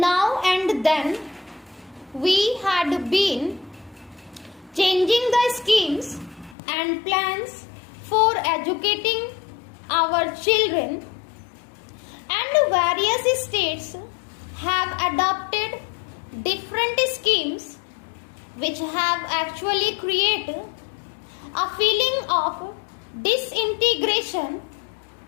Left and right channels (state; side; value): drops out; right; at 6.6 s